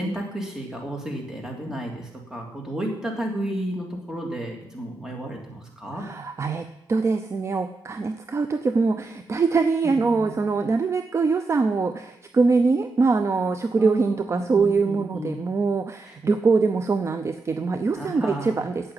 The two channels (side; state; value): left; quieter; 3.6 dB